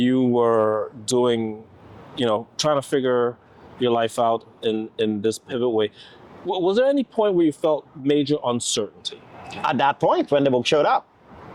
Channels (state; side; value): identical; both; correlation 1.00